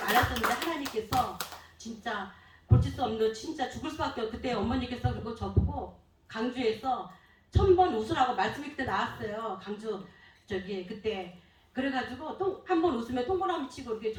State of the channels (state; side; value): identical; both; correlation 1.00